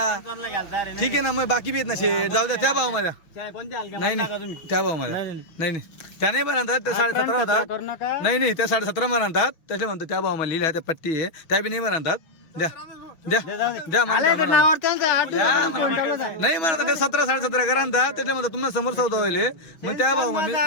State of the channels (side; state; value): right; late; 6.3 ms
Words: समजायला घालता रे. ठीक आहे ना मग बाकी बी आहेत ना शेठ. जाऊ द्या त्या भाऊ माझ्या. कोणत्या हलक्या नाही टाका नाही तुम्ही. त्या भाऊ माझ्या. नाही त्या नाही म्हणतात. त्या 17.5 होतात. करू नका. नाही त्या 17.5 म्हणतात. त्याचे म्हणतो त्या भाऊ मला लिहिल्या त्या पट्टी आहे त्या बी नाही म्हणतात. द्या म्हणता म्हणा. नावावर त्यांचं 8 द्या म्हणा. नाही म्हणतात त्या 17-17.5 करा म्हणतात. त्याच्या म्हणतात तुम्हाला समोर सौदा होईल. मग त्या भाऊ मी